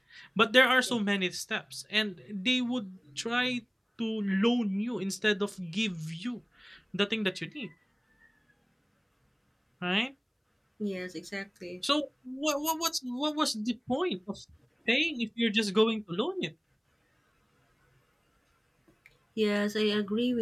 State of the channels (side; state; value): both; identical; correlation 1.00